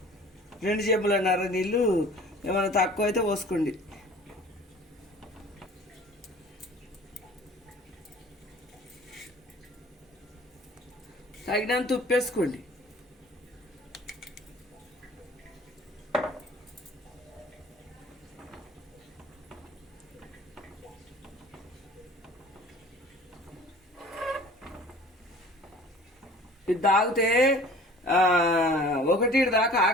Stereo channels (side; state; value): both; normal; correlation 0.47